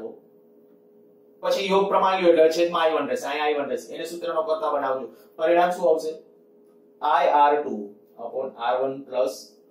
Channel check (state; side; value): identical; both; correlation 1.00